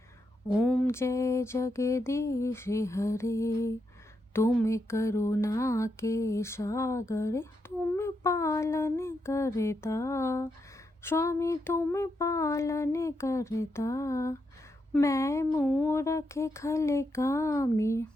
ओम जय जगदीश हरे, तुम करुणा के सागर, तुम पालन करता, स्वामी तुम पालन करता। मैं मूरख खल कामी,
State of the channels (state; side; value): normal; both; correlation 0.83